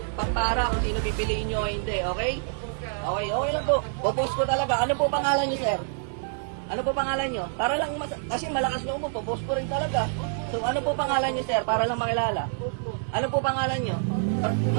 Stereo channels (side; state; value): left; silent; digital silence